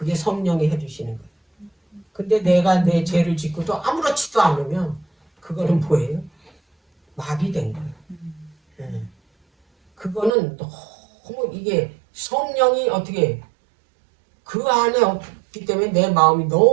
성령이 해주시는 거예요. 근데 내가 내 죄를 짓고도 아무렇지도 않으면 그거는 뭐예요? 마비된 거예요. 그거는 너무 이게 성령이 어떻게 그 안에 없기 때문에 내 마음이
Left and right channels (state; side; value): drops out; left; at 10.3 s